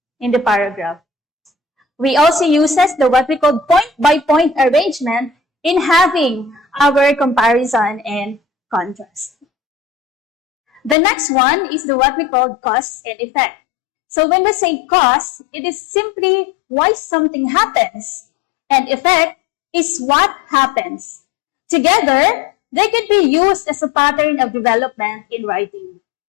in the paragraph. We also use the what we call point-by-point arrangement in having our comparison and contrast. The next one is the what we call cause and effect. So when we say cause, it is simply why something happens, and effect is what happens. Together, they can be used as a pattern of development in writing.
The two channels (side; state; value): right; drops out; at 11.0 s